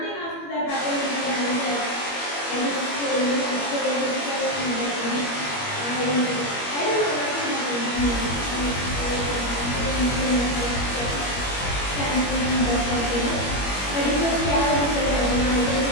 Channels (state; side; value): late; right; 21 ms